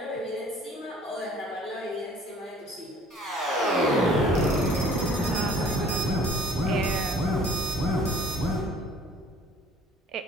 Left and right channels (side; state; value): both; normal; correlation 0.53